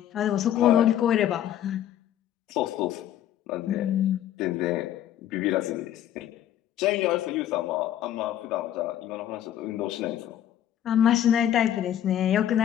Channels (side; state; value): right; quieter; 11.3 dB